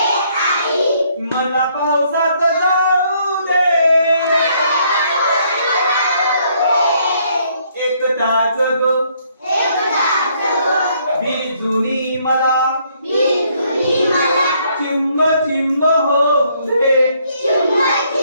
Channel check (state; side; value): inverted; both; correlation -0.68